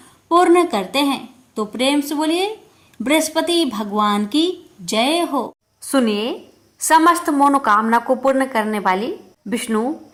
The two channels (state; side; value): identical; both; correlation 1.00